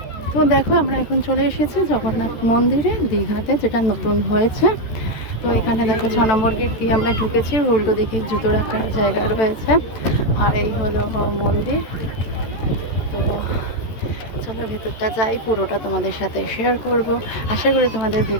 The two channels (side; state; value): right; late; 14 ms